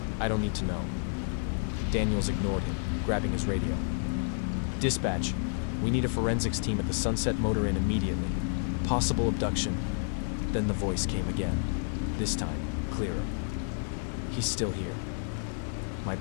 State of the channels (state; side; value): silent; right; 58 dB below the other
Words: I don't need to know." Daniels ignored him, grabbing his radio. "Dispatch, we need a forensics team at the Sunset Motor Inn immediately. Possible abduction." Then the voice came again, this time clearer. "He's still here." My